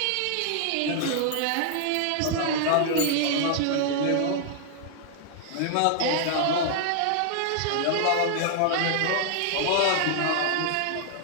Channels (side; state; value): both; different; correlation 0.00